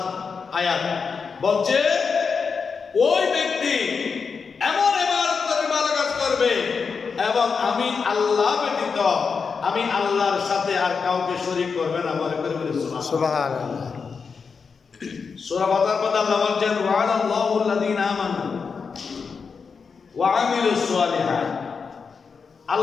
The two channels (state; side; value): quieter; right; 5.5 dB